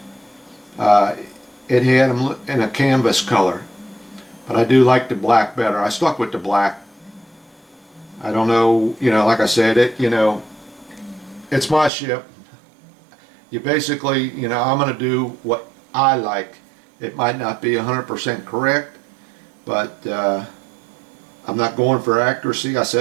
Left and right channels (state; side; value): drops out; left; at 11.9 s